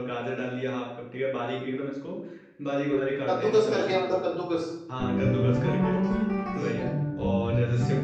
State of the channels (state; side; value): identical; both; correlation 1.00